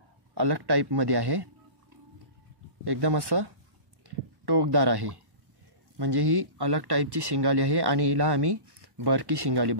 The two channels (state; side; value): late; left; 1.1 ms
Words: अलग टाईपमध्ये आहे. एकदम असं टोकदार आहे. म्हणजे ही अलग टाईपची शिंगाली आहे आणि हिला आम्ही बरकी शिंगाली